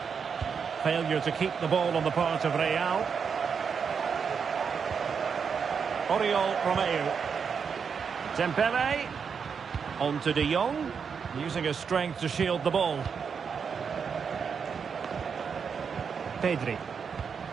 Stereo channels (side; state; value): left; quieter; 6.3 dB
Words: Failure to keep the ball on the part of Real. Oriol Romeu. Dembele. On to De Jong. Using his strength to shield the ball. Pedri.